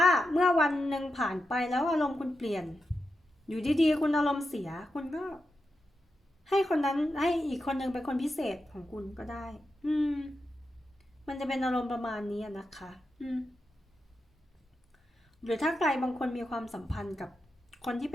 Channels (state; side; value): normal; both; correlation 0.88